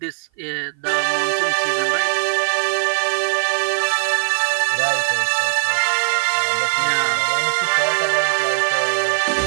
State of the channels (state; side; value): silent; left; 56 dB below the other